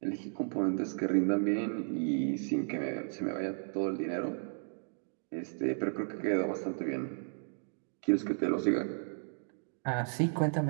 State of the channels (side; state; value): left; silent; digital silence